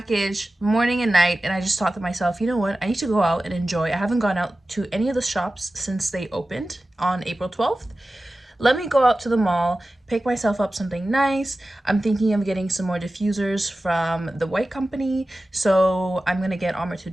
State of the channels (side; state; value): both; normal; correlation 0.95